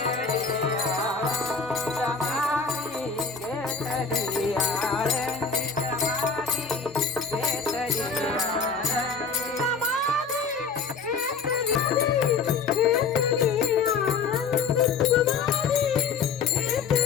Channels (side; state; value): right; quieter; 5.2 dB